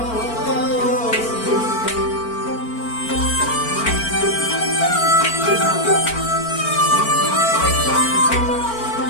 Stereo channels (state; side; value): late; right; 4.4 ms